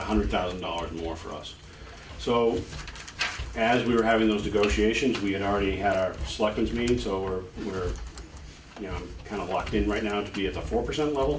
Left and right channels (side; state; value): both; identical; correlation 1.00